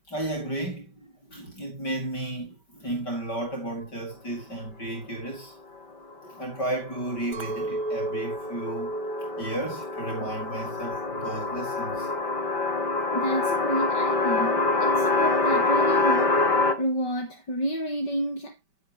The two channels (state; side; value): late; right; 5.1 ms